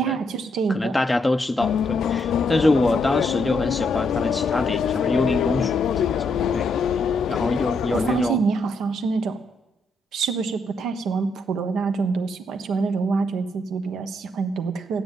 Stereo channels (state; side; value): normal; both; correlation 0.77